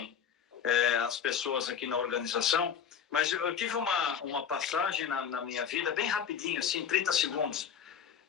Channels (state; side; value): quieter; right; 7.9 dB